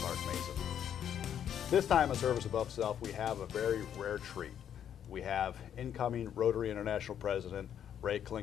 Mason. This time on Service Above Self, we have a very rare treat. We have incoming Rotary International President Ray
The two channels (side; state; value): right; quieter; 9.3 dB